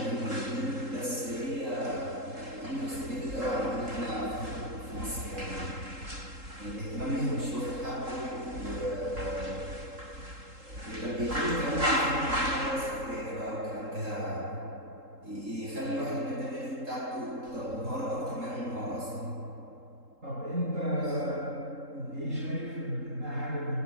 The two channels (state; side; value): late; left; 3.8 ms